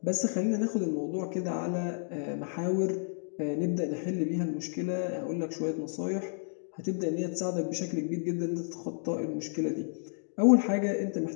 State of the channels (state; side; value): silent; right; digital silence